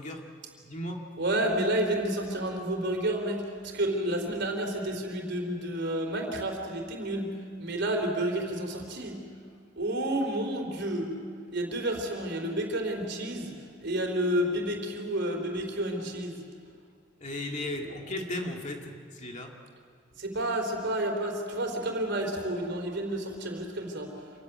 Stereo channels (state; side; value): normal; both; correlation 0.19